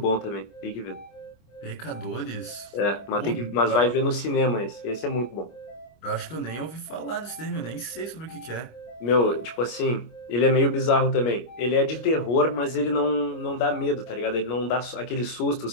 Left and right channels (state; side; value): late; right; 25 ms